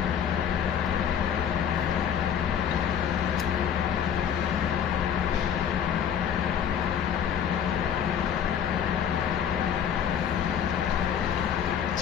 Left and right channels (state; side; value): quieter; right; 8.6 dB